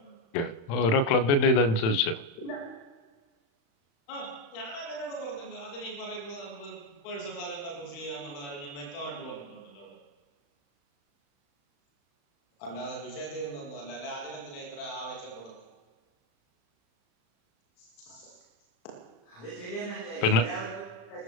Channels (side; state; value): right; late; 35 ms